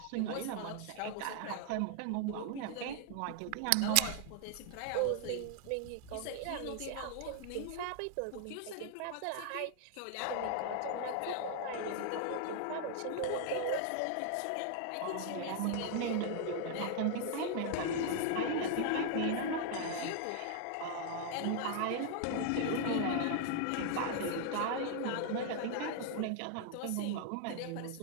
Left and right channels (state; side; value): different; both; correlation 0.00